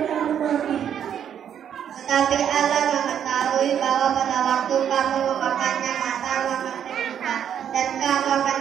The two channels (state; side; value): quieter; left; 9.1 dB